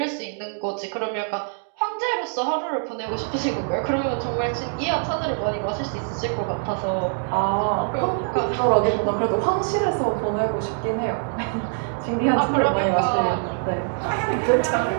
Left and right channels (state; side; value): silent; left; 63 dB below the other